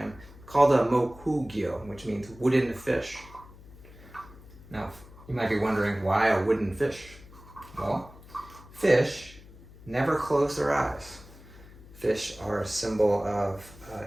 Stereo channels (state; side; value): noise; left; hum, 20 dB below the sound